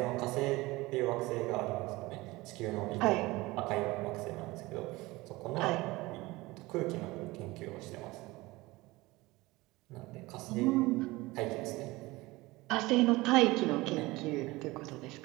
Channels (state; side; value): quieter; left; 21.0 dB